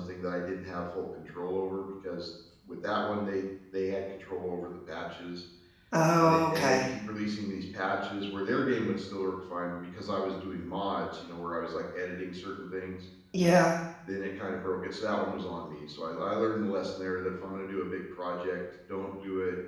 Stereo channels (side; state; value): both; identical; correlation 1.00